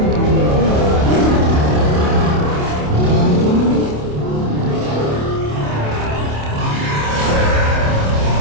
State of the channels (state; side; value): late; left; 27 ms